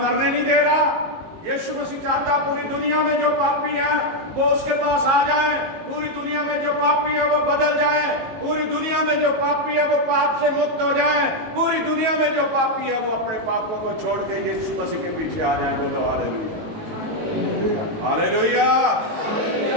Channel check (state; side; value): late; left; 19 ms